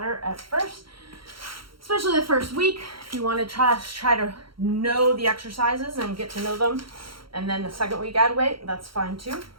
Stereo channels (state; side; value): late; left; 0.74 ms